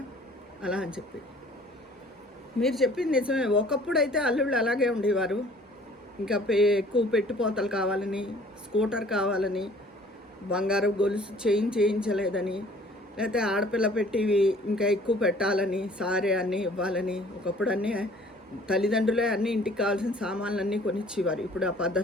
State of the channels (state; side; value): normal; both; correlation 0.53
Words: అలా అని చెప్పి. మీరు చెప్పింది నిజమే. ఒకప్పుడు అయితే అల్లుళ్ళు అలాగే ఉండేవారు. ఇంకా ఎక్కువ పెట్టుపోతలు కావాలని, స్కూటర్ కావాలని, బంగారు గొలుసు చేయించలేదని, లేకపోతే ఆడపిల్ల పెట్టివి ఇంకా ఎక్కువ పెట్టాలని, సారే అన్నీ ఇవ్వాలని. ఒకప్పుడు అన్నీ తల్లిదండ్రులే అన్నీ ఇంటికి కావాల్సిన సామాన్లన్నీ కొనిచ్చేవారు. ఇప్పుడు ఆ